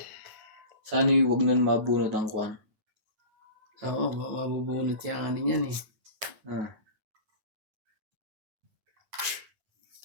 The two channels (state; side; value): late; left; 9.1 ms